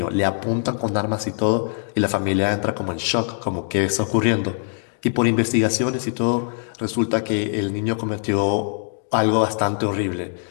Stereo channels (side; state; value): right; silent; digital silence